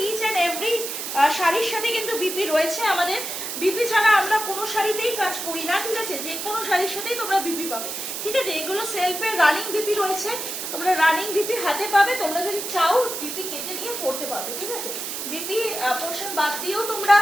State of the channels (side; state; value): right; noise; hiss, 5 dB below the sound